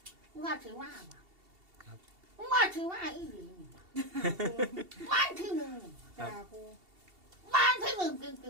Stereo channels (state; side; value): late; left; 2.7 ms